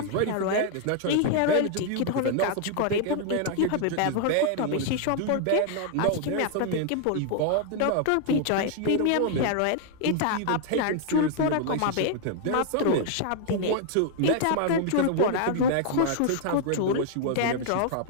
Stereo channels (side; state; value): both; different; correlation 0.00